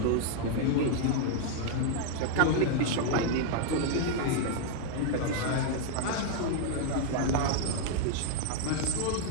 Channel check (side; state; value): both; different; correlation 0.00